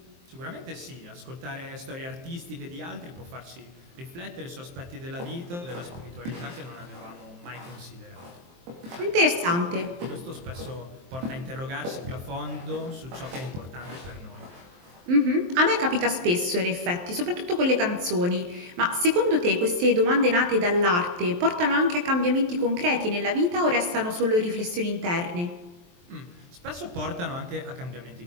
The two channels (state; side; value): late; left; 23 ms